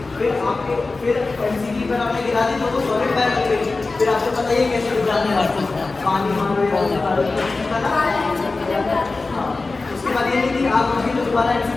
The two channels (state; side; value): quieter; right; 3.6 dB